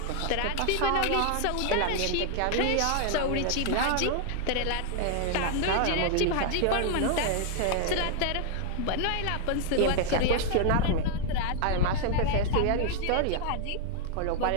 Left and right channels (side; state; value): both; different; correlation 0.00